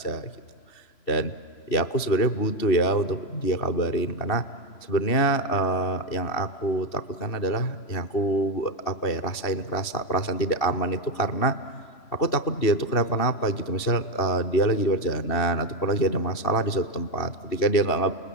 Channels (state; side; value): late; right; 2.7 ms